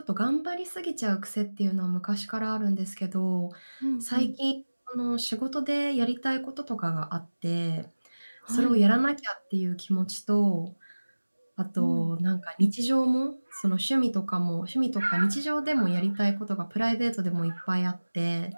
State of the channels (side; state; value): both; inverted; correlation -1.00